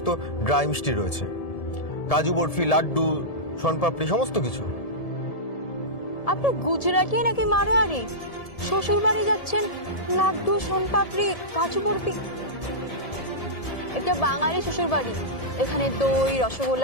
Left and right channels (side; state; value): right; late; 1.7 ms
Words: ড্রাই মিষ্টি রয়েছে, কাজু বরফি, লাড্ডু, শনপাপড়ি, সমস্ত কিছু। আপনি গুজরাটি নাকি মারোয়ারি? শ্বশুর বাড়ি যাচ্ছেন, লাড্ডু, শনপাপড়ি, কাজু বরফি। একটা বাঙালি শ্বশুর বাড়ি, এখানে দই,